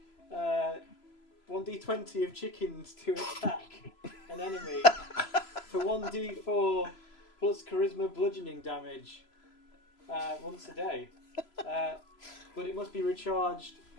1d20 of chickens to attack an enemy for 1d4 plus charisma bludgeoning damage once a day. But it must be recharged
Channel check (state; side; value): late; right; 3.0 ms